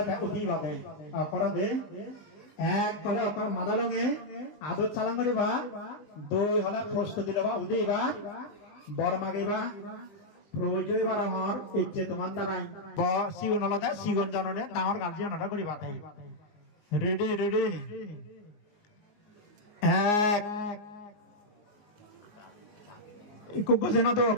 উদি বাদে করবে এক কলে মাদালঙে আদর চালান করিবা দুই হলে প্রস্তুতি লওয়া উদি এবার বর মাগিবা প্রয়োজন এবার আমার ইচ্ছে তোমার দ্বারাই সিগুন হলে সিগুন জাননে ডাঙর গার্জিয়ান হলে করিবা রেডি রেডি এক গজনা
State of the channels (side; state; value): right; late; 19 ms